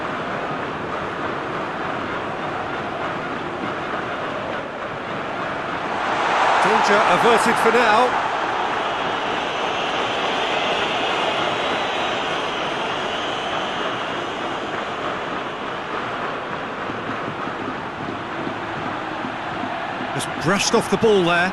Danger averted for now. Just brushed off the ball there.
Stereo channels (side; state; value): left; noise; rumble, 29 dB below the sound